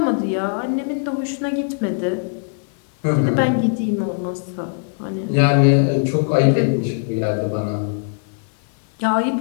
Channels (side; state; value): right; silent; 64 dB below the other